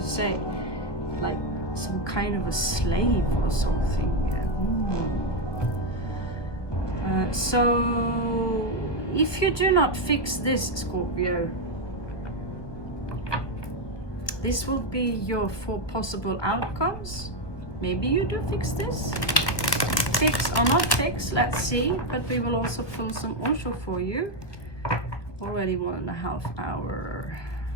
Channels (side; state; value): right; late; 1.3 ms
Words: say. Like some kind of a slave or something. So, if you do not fix this, Scorpio, this will be your 4 possible outcomes. Maybe you do fix this. Fix or not fix, let's see. But we will also pull some Osho for you. Already 1.5 hours.